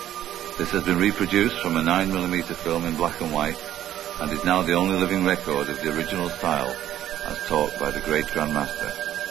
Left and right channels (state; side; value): quieter; left; 12.1 dB